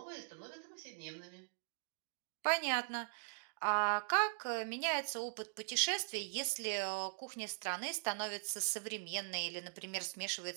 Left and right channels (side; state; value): left; silent; digital silence